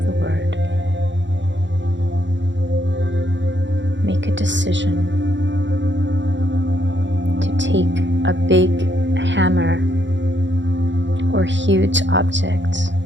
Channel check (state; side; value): late; left; 0.53 ms